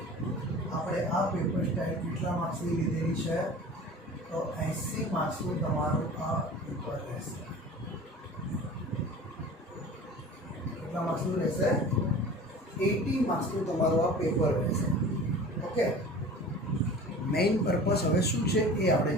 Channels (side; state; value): both; normal; correlation 0.40